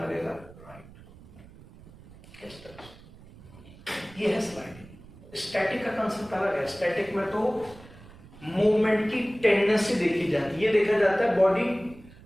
लगेगा? राइट। इस तरह से ये है स्लाइडिंग। स्टैटिक का कंसेप्ट अलग है। स्टैटिक में तो मूवमेंट की टेंडेंसी देखी जाती है। ये देखा जाता है बॉडी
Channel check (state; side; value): noise; right; rumble, 21 dB below the sound